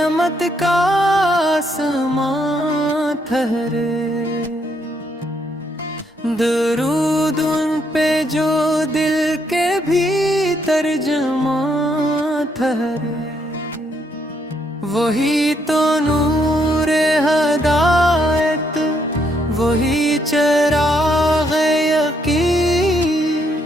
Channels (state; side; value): normal; both; correlation 0.74